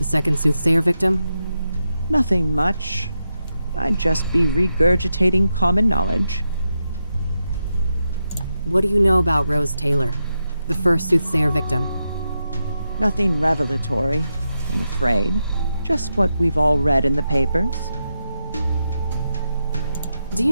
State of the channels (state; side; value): inverted; both; correlation -0.87